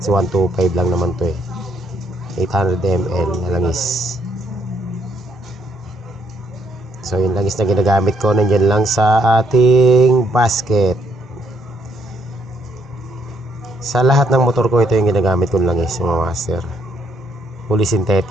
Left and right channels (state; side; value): normal; both; correlation 0.71